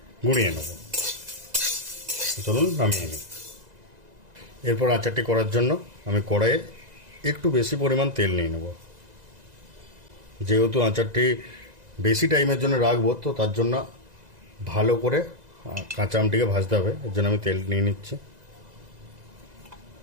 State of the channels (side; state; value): left; late; 2.0 ms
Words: গুঁড়িয়ে নেব। চলুন নামিয়ে নিই। এরপর আচারটি করার জন্য আমি কড়াইয়ে একটু বেশি পরিমাণ তেল নিয়ে নেব। যেহেতু আচারটি বেশি টাইমের জন্য রাখবো, তো তার জন্য ভালো করে কাঁচা আমটিকে ভাজতে হবে। এর জন্য আমি তেল নিয়ে নিচ্ছি।